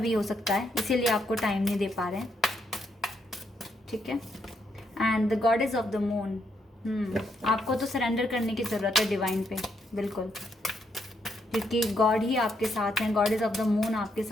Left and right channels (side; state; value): both; normal; correlation 0.76